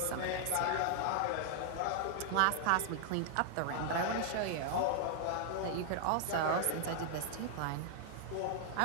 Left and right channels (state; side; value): different; both; correlation 0.00